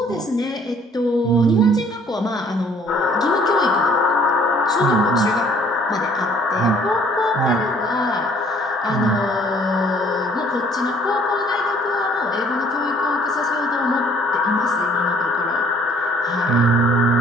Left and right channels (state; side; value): normal; both; correlation 0.58